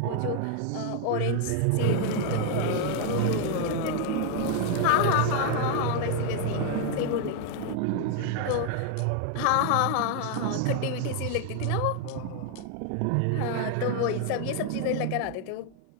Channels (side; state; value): both; different; correlation 0.00